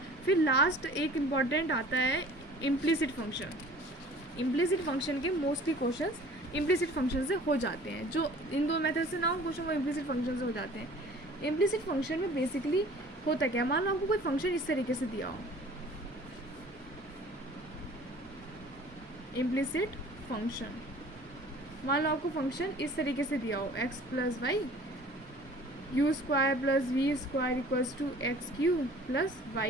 फिर लास्ट एक इम्पॉर्टेंट आता है इम्प्लिसिट फंक्शन. इम्प्लिसिट फंक्शन के मोस्टली क्वेश्चंस इम्प्लिसिट फंक्शन से हो जाते हैं. जो इन दो मेथड से ना हो क्वेश्चन वो इम्प्लिसिट फंक्शन से हो जाते हैं. इम्प्लिसिट फंक्शन में बेसिकली होता क्या, मान लो आपको कोई फंक्शन इस तरीके से दिया हो, इम्प्लिसिट फंक्शन, मान लो आपको फंक्शन इस तरीके से दिया हो x plus y u square plus v square equals to x³ plus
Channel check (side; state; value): both; normal; correlation 0.48